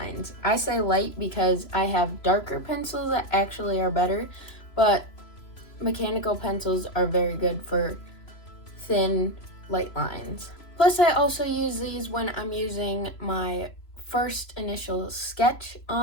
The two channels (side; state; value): right; late; 3.0 ms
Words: I say light because I have darker pencils that actually are better, but mechanical pencils are very good for thin, light lines. Plus, I also use these when I'm using my first initial sketch